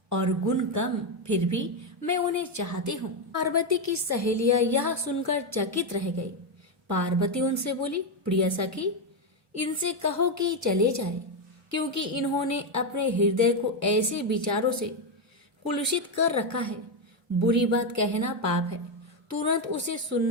और गुण कम, फिर भी मैं उन्हें चाहती हूँ। पार्वती की सहेलियां यह सुनकर चकित रह गई। पार्वती उनसे बोली, प्रिय सखी, इनसे कहो कि चले जाए, क्योंकि इन्होंने अपने हृदय को ऐसे विचारों से कुलुषित कर रखा है। बुरी बात कहना पाप है, तुरंत उसे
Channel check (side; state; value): both; normal; correlation 0.06